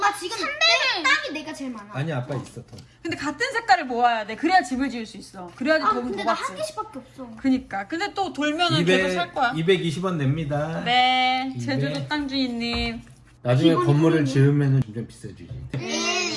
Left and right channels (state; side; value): identical; both; correlation 1.00